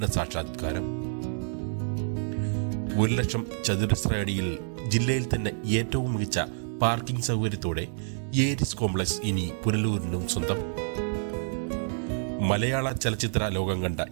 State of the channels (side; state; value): left; silent; digital silence